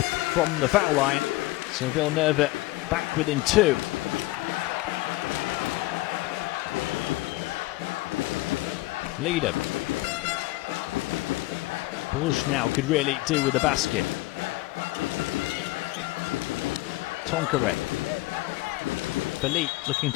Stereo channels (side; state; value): right; quieter; 19.8 dB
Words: from the foul line, so Villeneuve back within 2. Leader. Bourges now could really do with the basket. Tonqueret. Philippe looking